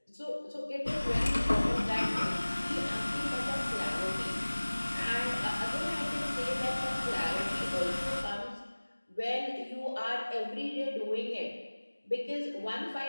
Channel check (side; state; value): both; inverted; correlation -1.00